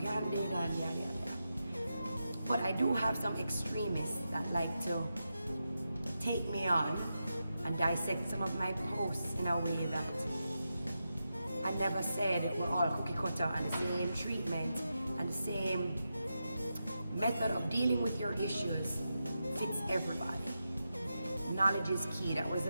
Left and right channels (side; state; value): both; inverted; correlation -0.88